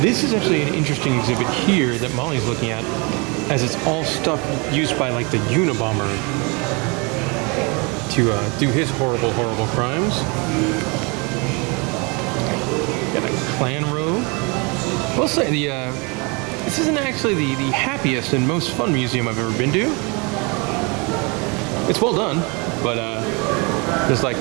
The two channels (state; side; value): quieter; left; 30.2 dB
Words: This is actually an interesting exhibit here that Molly's looking at, as it's all stuff used by like the Unabomber to do his horrible, horrible crimes. Got a clan robe. We'll say this isn't actually the happiest and most fun museum I've ever been to. It's well done, but just like,